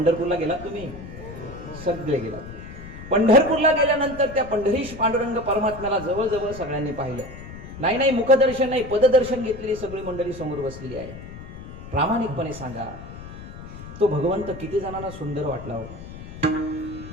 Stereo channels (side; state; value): left; noise; rumble, 13 dB below the sound